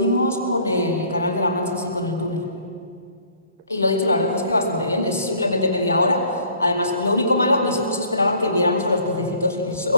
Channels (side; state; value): both; inverted; correlation -0.56